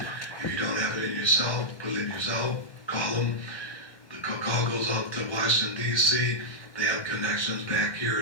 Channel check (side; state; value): right; late; 1.1 ms